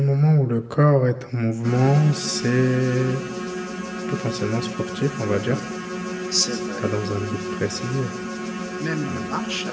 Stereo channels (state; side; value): identical; both; correlation 1.00